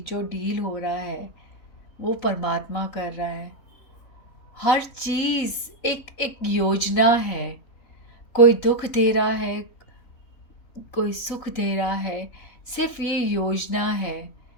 डील हो रहा है वो परमात्मा कर रहा है। हर चीज़ एक एक योजना है। कोई दुख दे रहा है, कोई सुख दे रहा है, सिर्फ ये योजना है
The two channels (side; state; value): right; late; 4.2 ms